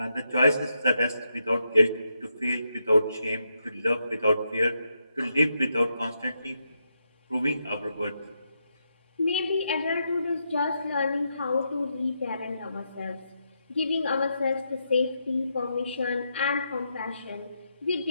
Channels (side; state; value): both; inverted; correlation -0.82